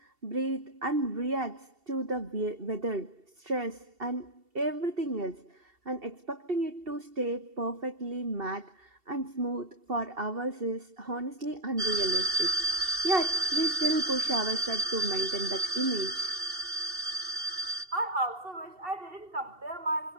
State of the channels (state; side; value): late; left; 2.7 ms